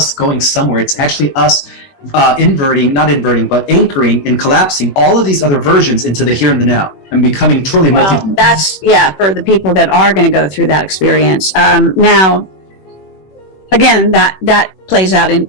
going somewhere. It's actually us anchoring and collapsing all of these other versions into the here and the now and becoming truly multi-dimensional. That's, for the people that are going to go through that experience. Now, again, that plays out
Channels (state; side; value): late; right; 21 ms